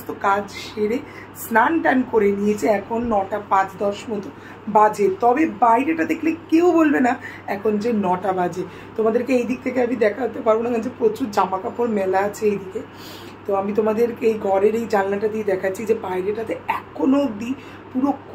কাজ সেরে স্নান টান করে নিয়েছে। এখন 9টা 5-10 মতো বাজে, তবে বাইরেটা দেখলে কেউ বলবে না এখন যে 9টা বাজে। তোমাদেরকে এই দিক থেকে আমি দেখাতে পারবো না, কারণ যে প্রচুর জামা কাপড় মেলা আছে এইদিকে। তো আমি তোমাদেরকে এই ঘরের এই জানলাটা দিয়ে দেখাচ্ছি যে বাইরেটাতে এখনো অবধি পুরো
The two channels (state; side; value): identical; both; correlation 1.00